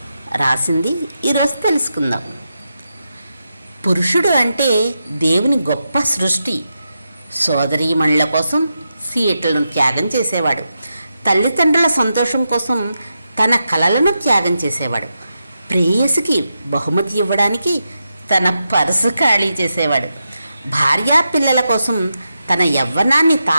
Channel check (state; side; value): inverted; both; correlation -0.87